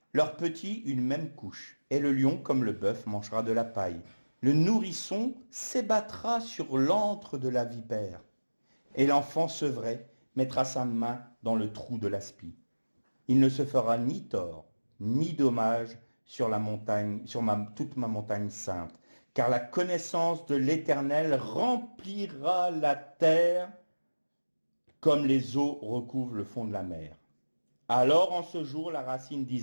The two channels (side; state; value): both; inverted; correlation -1.00